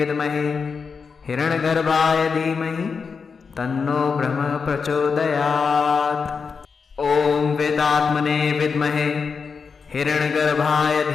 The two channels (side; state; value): right; quieter; 5.4 dB